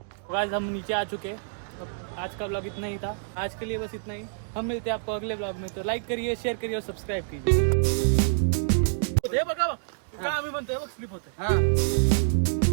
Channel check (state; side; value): silent; left; digital silence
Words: गाइस हम नीचे आ चुके हैं. अब आज का ब्लॉग इतना ही था. आज के लिए बस इतना ही. हम मिलते हैं आपको अगले ब्लॉग में. तो लाइक करिए, शेयर करिए और सब्सक्राइब कीजिए. बघा का आम्ही म्हणतोय बघ स्लिप होतंय हा